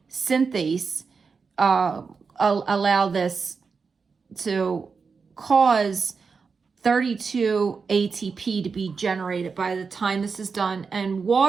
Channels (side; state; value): left; quieter; 5.1 dB